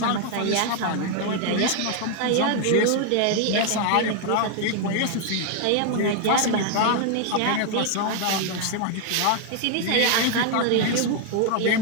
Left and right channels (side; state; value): both; different; correlation 0.00